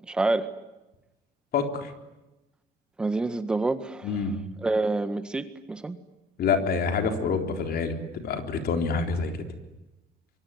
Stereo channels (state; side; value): normal; both; correlation 0.53